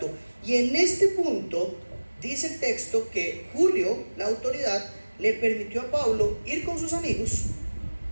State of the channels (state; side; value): inverted; both; correlation -1.00